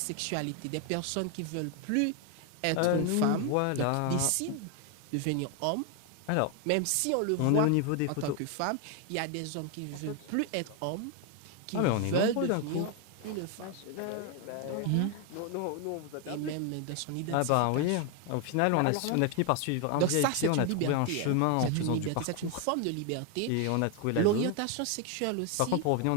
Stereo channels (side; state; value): both; different; correlation 0.01